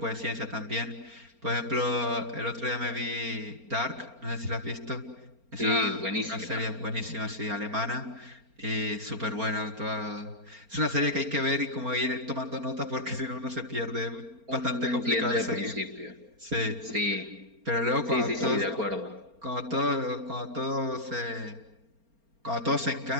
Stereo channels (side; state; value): left; late; 4.3 ms